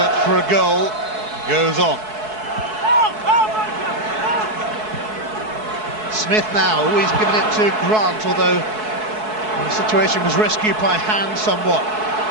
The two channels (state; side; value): late; left; 4.6 ms